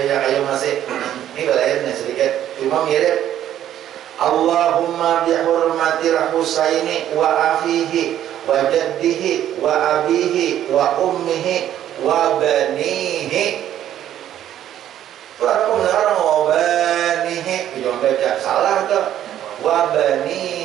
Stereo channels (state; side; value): quieter; left; 11.4 dB